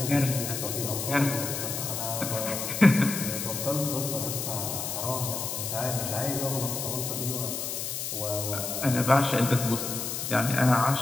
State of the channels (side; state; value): left; noise; hiss, 4 dB below the sound